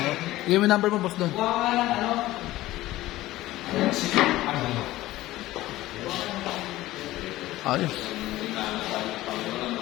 Yung number mo, boss Don. Ayos.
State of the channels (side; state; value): right; quieter; 16.5 dB